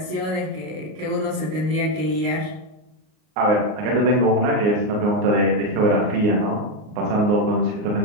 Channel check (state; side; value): late; left; 38 ms